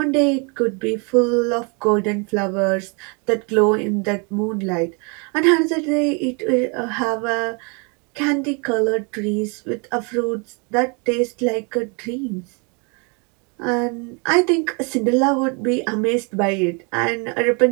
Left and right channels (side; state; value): left; quieter; 33.9 dB